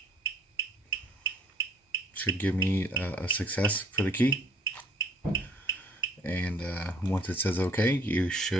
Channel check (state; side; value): normal; both; correlation 0.59